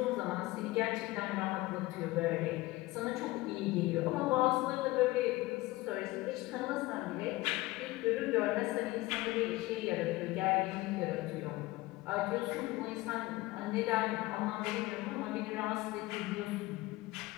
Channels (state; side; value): quieter; right; 19.8 dB